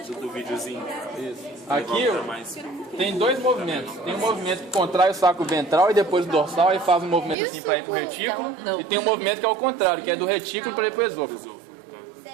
Do videozinho. Isso. Aqui tem dois movimentos. Tem um movimento que contrai o saco ventral e depois o dorsal e faz um movimento assim para ir para o retículo. E tem um movimento que é o contrário, que é do retículo para ir para o esôfago.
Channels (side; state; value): left; drops out; at 7.4 s